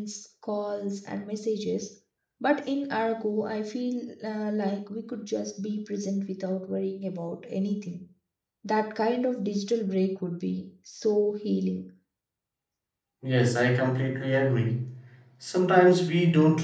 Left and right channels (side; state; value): both; identical; correlation 1.00